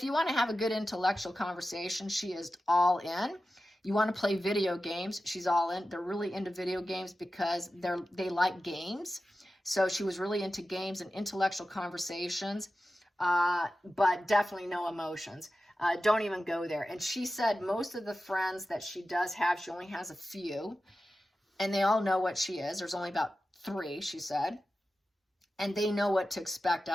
you want to have a good intellectual conversation, she is all in. You want to play video games, she's all in. They're really into video games because they like games. So she was really into games and intellectual conversations, but definitely no emotions. Don't even go there. And she said most of the friends that she does have, she only has a few, and they all know what she is. There's only about 3, she said, and they know what to expect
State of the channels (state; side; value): normal; both; correlation 0.93